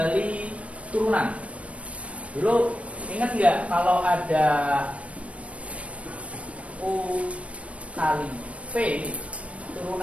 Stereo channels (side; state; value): left; late; 0.064 ms